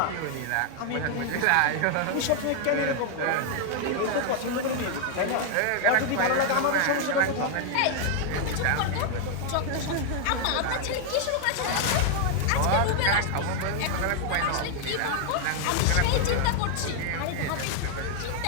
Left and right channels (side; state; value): both; different; correlation 0.00